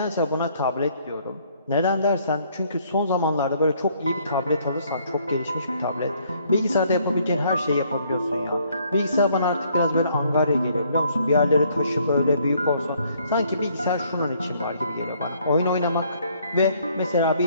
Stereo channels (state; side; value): inverted; both; correlation -0.65